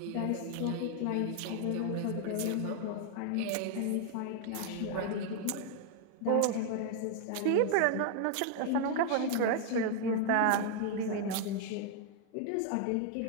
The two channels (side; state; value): both; different; correlation 0.00